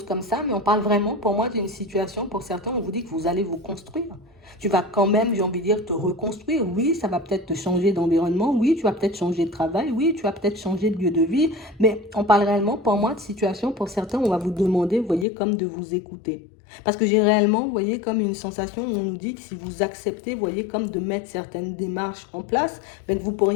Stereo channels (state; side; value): drops out; right; at 15.2 s